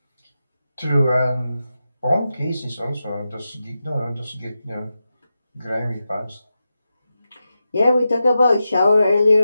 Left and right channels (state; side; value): inverted; both; correlation -0.90